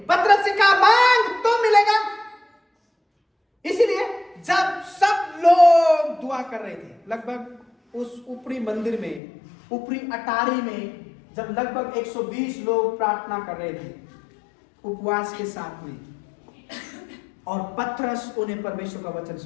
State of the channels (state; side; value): drops out; right; at 9.2 s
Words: पतरस से कहा मांग तो मिलेगा। इसीलिए जब सब लोग दुआ कर रहे थे, लगभग उस ऊपरी मंदिर में, ऊपरी अटारी में, जब लगभग 120 लोग प्रार्थना कर रहे थे उपवास के साथ में, और पतरस उन्हें परमेश्वर का वचन